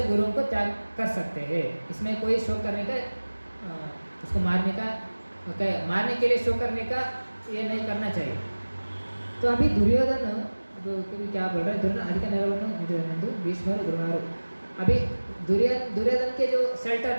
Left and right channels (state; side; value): inverted; both; correlation -1.00